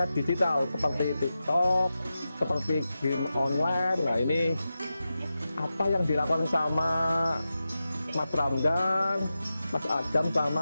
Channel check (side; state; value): both; inverted; correlation -0.92